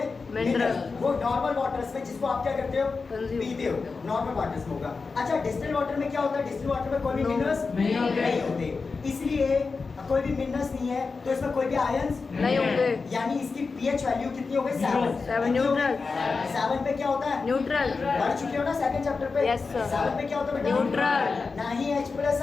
Minerals। वो नॉर्मल वाटर्स में जिसको आप क्या करते हो? Consume। पीते हो, नॉर्मल वाटर्स में होगा। अच्छा, डिस्टिल वाटर में क्या होता है? डिस्टिल वाटर में कोई भी No। मिनरल्स नहीं होते। नहीं होते, इसलिए कोई भी मिनरल्स नहीं है तो इसमें कोई भी आयंस नहीं होंगे। यानी इसकी पीएच वैल्यू कितनी हो गई? Zero। 7। न्यूट्रल। 7 पे क्या होता है? न्यूट्रल। पढ़ चुके हो ना सेकंड चैप्टर पे? Yes, sir। 7 पे क्या होता है बेटा? न्यूट्रल। ना ही H+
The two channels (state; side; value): quieter; right; 4.5 dB